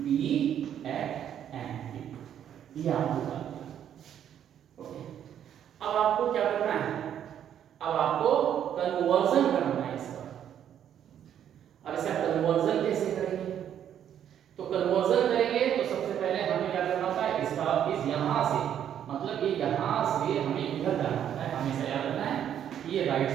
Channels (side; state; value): left; quieter; 9.7 dB